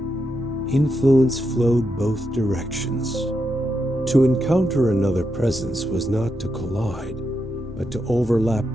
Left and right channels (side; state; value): both; normal; correlation 0.84